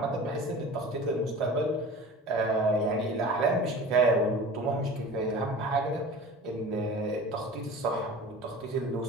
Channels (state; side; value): normal; both; correlation 0.38